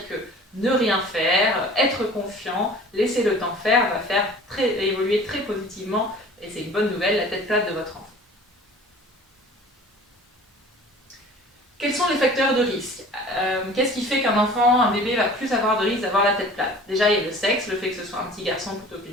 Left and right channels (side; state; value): both; normal; correlation 0.45